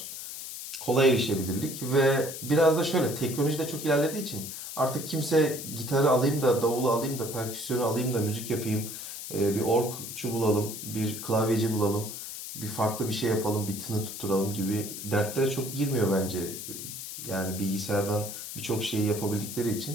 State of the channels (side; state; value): left; noise; hiss, 9 dB below the sound